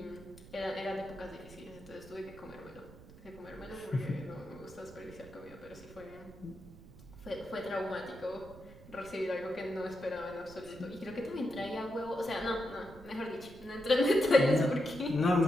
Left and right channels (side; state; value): right; noise; rumble, 19 dB below the sound